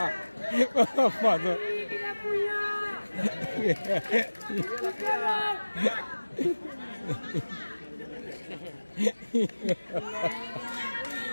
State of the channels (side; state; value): both; inverted; correlation -1.00